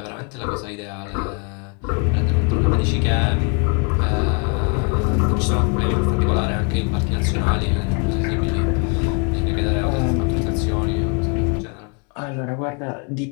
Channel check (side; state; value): right; quieter; 35.3 dB